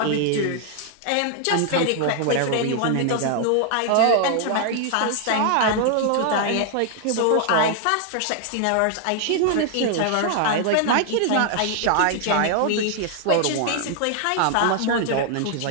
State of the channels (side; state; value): both; different; correlation 0.00